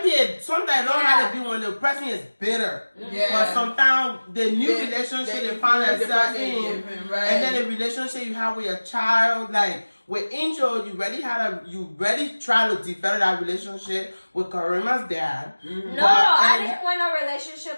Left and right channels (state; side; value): inverted; both; correlation -1.00